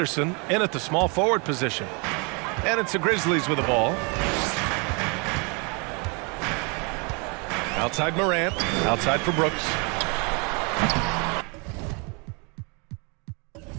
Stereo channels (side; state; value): left; quieter; 32.4 dB